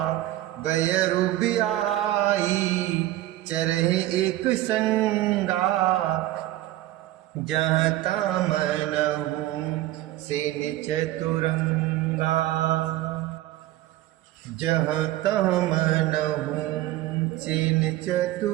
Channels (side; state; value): left; quieter; 15.5 dB